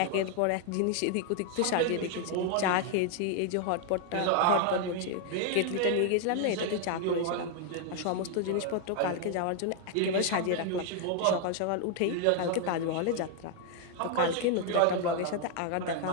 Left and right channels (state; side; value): different; both; correlation 0.00